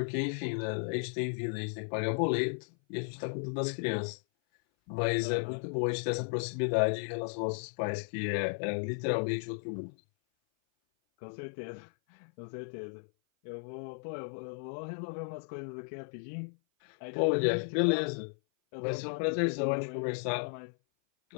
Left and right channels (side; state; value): right; silent; 55 dB below the other